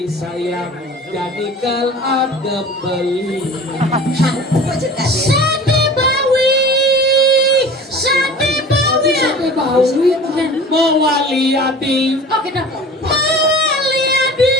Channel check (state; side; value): normal; both; correlation 0.40